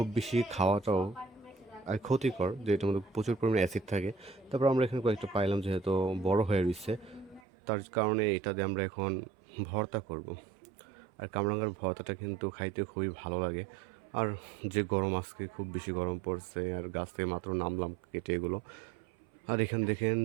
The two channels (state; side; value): drops out; left; at 7.4 s